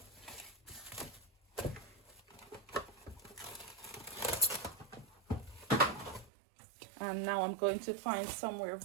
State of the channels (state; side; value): drops out; left; at 6.3 s